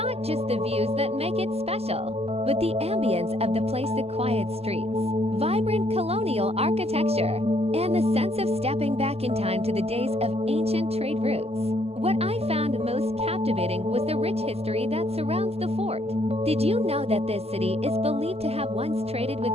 just the views that make it special, but the ambience of the place, the quiet streets, vibrant colonial architecture, and the sense of stepping back in time to the days of ancient trade routes. What I found most captivating was the rich history that surrounds the fort. Did you know that this city is believed to have once traded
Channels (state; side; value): late; left; 0.29 ms